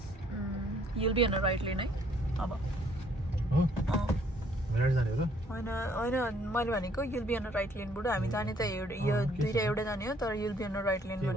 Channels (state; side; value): normal; both; correlation 0.64